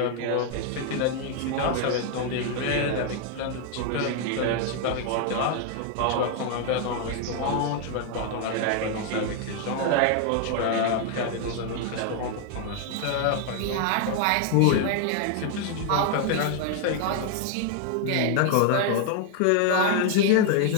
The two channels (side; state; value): both; different; correlation 0.00